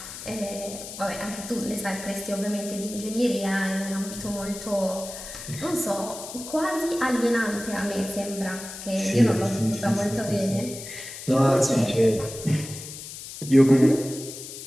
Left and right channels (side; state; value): left; noise; hiss, 11 dB below the sound